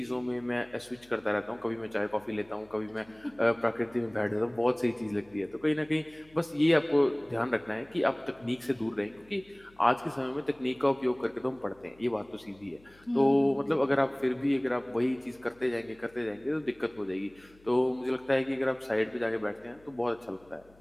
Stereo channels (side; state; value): left; noise; hum, 28 dB below the sound